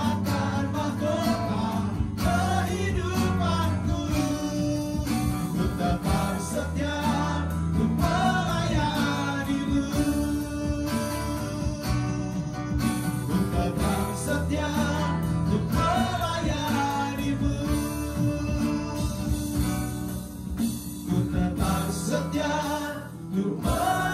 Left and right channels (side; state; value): both; identical; correlation 1.00